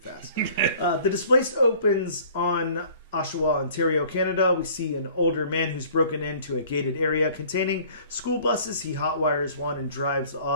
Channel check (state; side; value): inverted; both; correlation -0.51